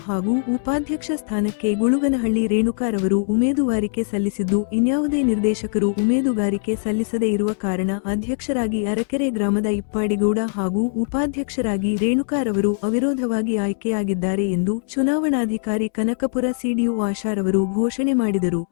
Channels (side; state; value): right; silent; 64 dB below the other